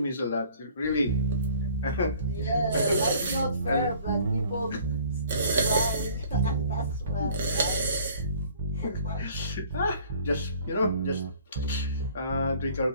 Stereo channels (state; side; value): inverted; both; correlation -0.53